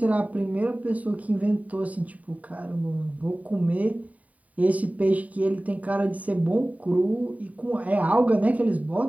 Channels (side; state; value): left; late; 0.071 ms